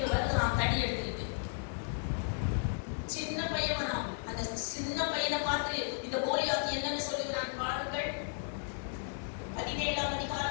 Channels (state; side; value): silent; right; digital silence